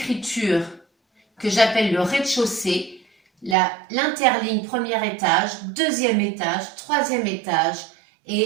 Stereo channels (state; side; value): drops out; left; at 3.6 s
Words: que j'appelle le rez-de-chaussée, l'interligne premier étage, deuxième étage, troisième étage